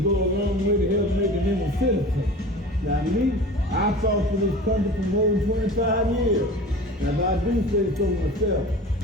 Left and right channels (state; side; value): normal; both; correlation 0.37